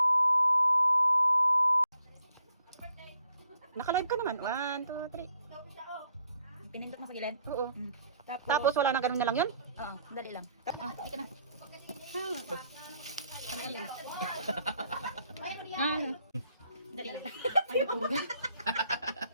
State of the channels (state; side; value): inverted; both; correlation -0.70